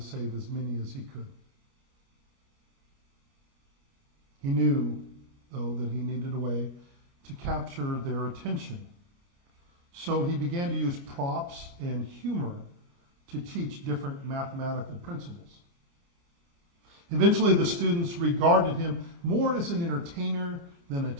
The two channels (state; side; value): late; left; 29 ms